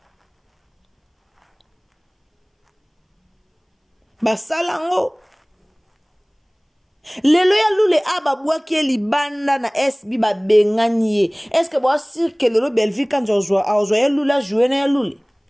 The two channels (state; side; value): identical; both; correlation 1.00